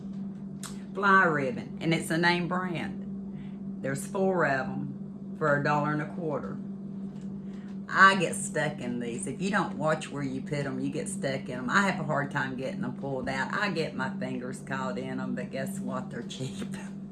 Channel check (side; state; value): both; identical; correlation 1.00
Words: fly ribbon, and it's a name brand. There's 4 of them for $1.25. I get stuck in these. If you don't watch where you put them, you get stuck in them. I have a hard time getting them pulled out. I get my fingers caught in them, but guess what? They're cheap.